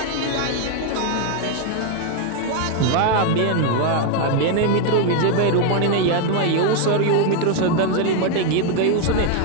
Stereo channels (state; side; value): different; both; correlation 0.01